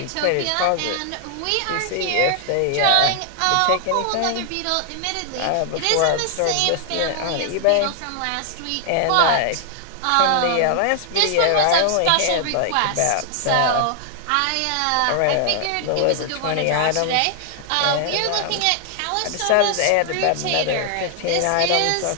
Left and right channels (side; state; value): both; different; correlation 0.00